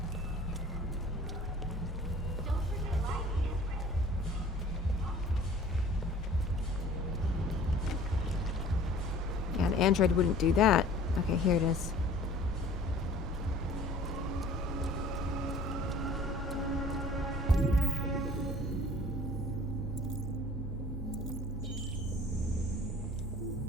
Yeah, an android wouldn't do that. Okay, here it is.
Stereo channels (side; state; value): both; normal; correlation 0.48